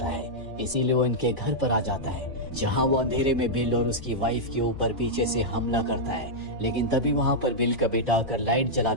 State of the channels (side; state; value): both; normal; correlation -0.07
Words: है, इसीलिए वो इनके घर पर आ जाता है, जहाँ वो अंधेरे में बिल और उसकी वाइफ के ऊपर पीछे से हमला करता है। लेकिन तभी वहाँ पर बिल का बेटा आकर लाइट जला